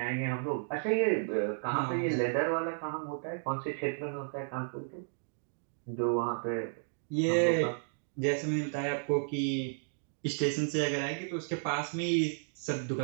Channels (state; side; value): silent; left; digital silence